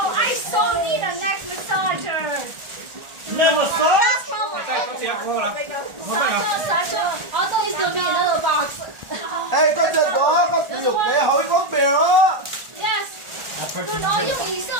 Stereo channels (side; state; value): left; late; 1.4 ms